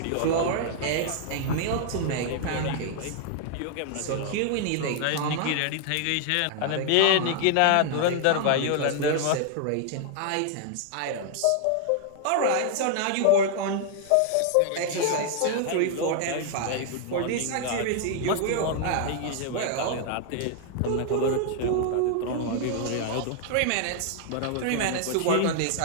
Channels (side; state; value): both; different; correlation -0.01